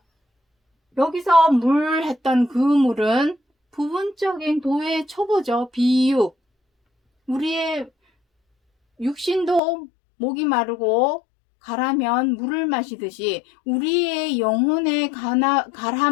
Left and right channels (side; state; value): right; drops out; at 9.6 s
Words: 여기서 물 했던 그 물은 부분적인 도의 초보죠. 비유. 우리의 육신도 목이 마르고 가라면 물을 마시듯이 우리의 영혼의